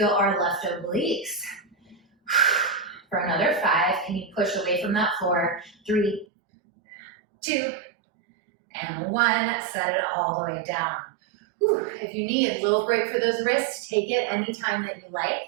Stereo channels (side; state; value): left; drops out; at 6.2 s